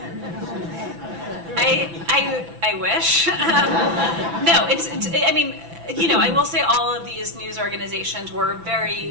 I wish. No, I will say all of these news organizations were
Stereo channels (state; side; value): late; left; 6.0 ms